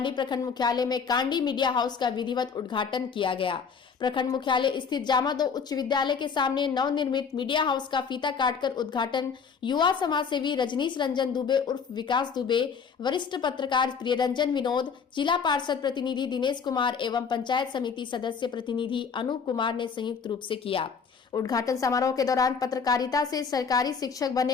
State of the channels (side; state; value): right; quieter; 6.0 dB